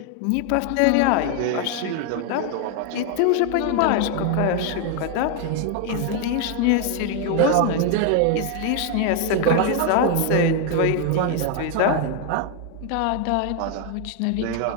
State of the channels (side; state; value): both; different; correlation 0.00